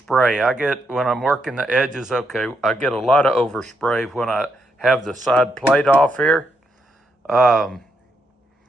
When I'm working the edges, I get a lot of overspray when I have the side plate off here. But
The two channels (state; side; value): normal; both; correlation 0.79